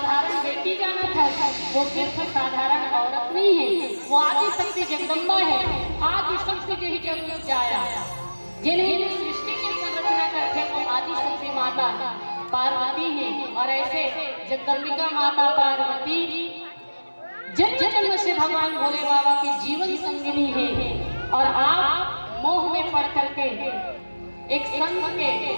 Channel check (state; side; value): inverted; both; correlation -1.00